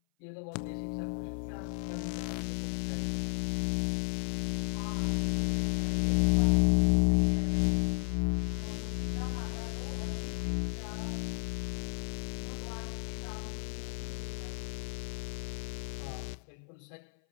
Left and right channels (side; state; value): right; silent; 56 dB below the other